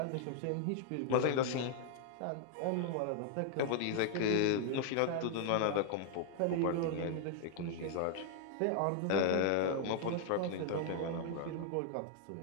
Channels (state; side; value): different; both; correlation 0.00